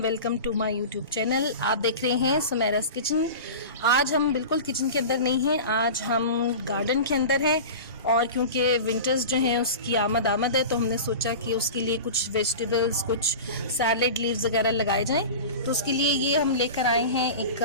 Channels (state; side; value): inverted; both; correlation -0.32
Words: welcome to my YouTube channel. आप देख रहे हैं सुमेरास किचन। आज हम बिल्कुल किचन के अंदर नहीं हैं, आज हम गार्डन के अंदर हैं। और क्योंकि विंटर्स जो हैं उसकी आमद है, तो हमने सोचा कि उसके लिए कुछ वेजिटेबल्स, कुछ सैलेड लीव्स वगैरह लगाए जाएं। तो उसके लिए ये हम लेकर आए हैं, एक